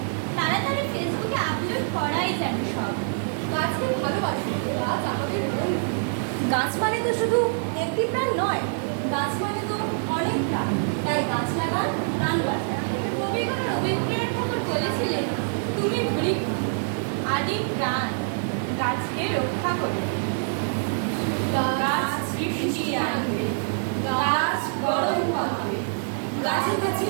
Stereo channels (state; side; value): silent; left; 61 dB below the other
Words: তাড়াতাড়ি ফেসবুকে আপলোড করাই যেন সব। গাছকে ভালোবাসি, গাছ আমাদের মন। গাছ মানে তো শুধু একটি প্রাণ নয়, গাছ মানে তো অনেক প্রাণ। তাই গাছ লাগান, প্রাণ বাঁচান। কবিগুরু রবীন্দ্রনাথ ঠাকুর বলেছিলেন, তুমি বৃক্ষ, আদি প্রাণ, গাছকে রক্ষা করো। গাছ বৃষ্টি আনবে, গাছ গরম হবে, গাছে গাছে